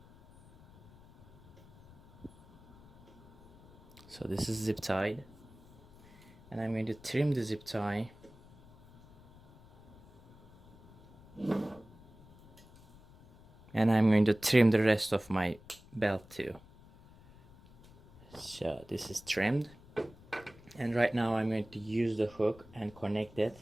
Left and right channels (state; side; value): noise; left; rumble, 23 dB below the sound